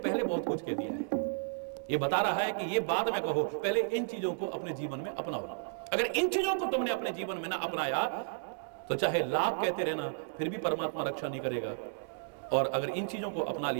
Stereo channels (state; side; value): silent; left; digital silence